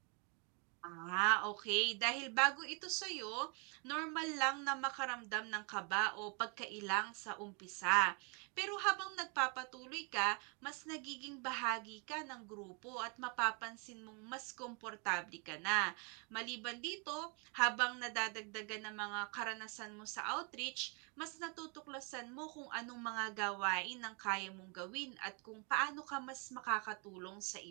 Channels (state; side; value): quieter; left; 34.9 dB